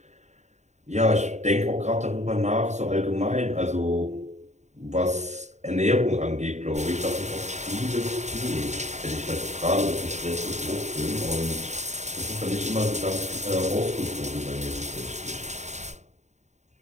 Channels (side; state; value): left; late; 0.34 ms